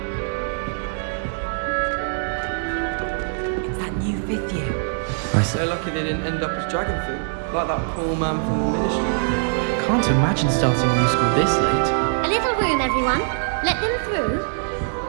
It's that new 5th year. So lucky they didn't end up as dragon food, like that poor man from the ministry. Can't imagine starting new school this late. A little room, everyone. Let them through.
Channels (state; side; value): silent; left; digital silence